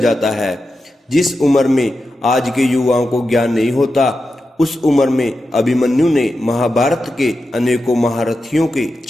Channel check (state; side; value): normal; both; correlation 0.90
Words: है। जिस उम्र में आज के युवाओं को ज्ञान नहीं होता, उस उम्र में अभिमन्यु ने महाभारत के अनेकों महारथियों के